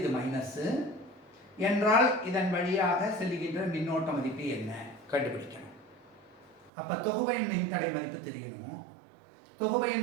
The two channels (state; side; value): drops out; left; at 6.7 s